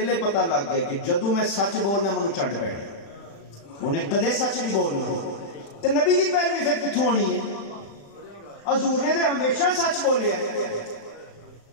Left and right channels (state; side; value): late; right; 35 ms